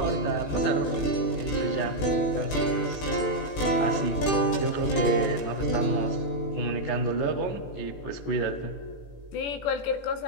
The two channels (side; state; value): right; late; 18 ms